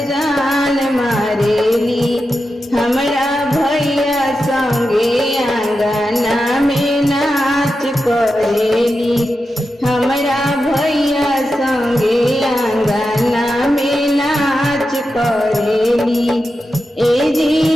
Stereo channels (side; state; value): both; normal; correlation 0.90